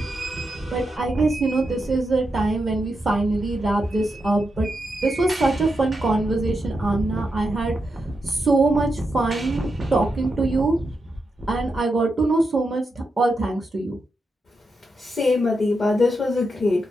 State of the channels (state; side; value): normal; both; correlation 0.85